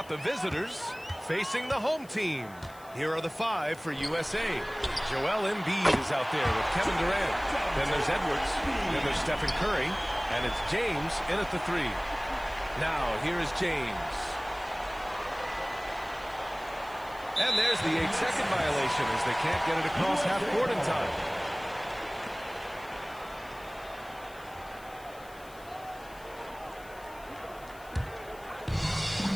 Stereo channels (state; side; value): noise; left; hiss, 23 dB below the sound